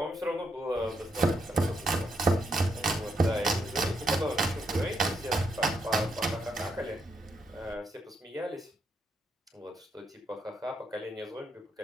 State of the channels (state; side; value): normal; both; correlation 0.78